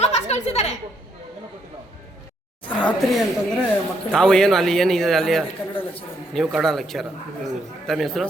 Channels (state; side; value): normal; both; correlation 0.73